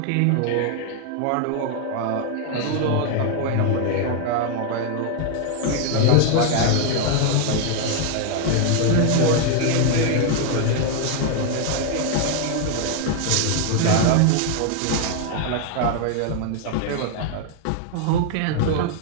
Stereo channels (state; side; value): different; both; correlation 0.00